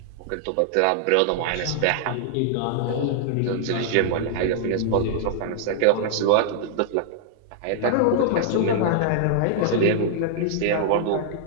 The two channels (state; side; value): different; both; correlation -0.01